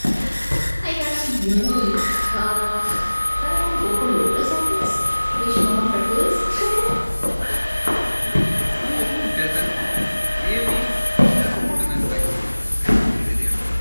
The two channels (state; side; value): inverted; both; correlation -1.00